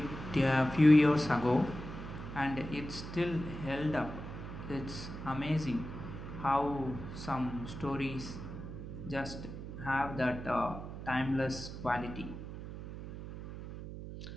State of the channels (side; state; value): right; noise; hum, 9 dB below the sound